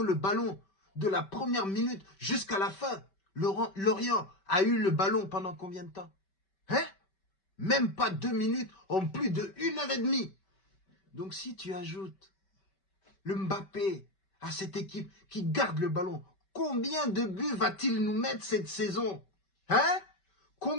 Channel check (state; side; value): late; right; 5.2 ms